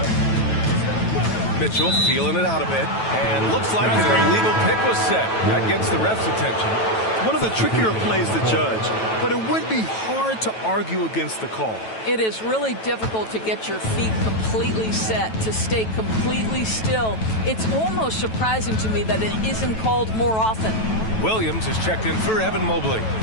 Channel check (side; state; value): right; late; 9.1 ms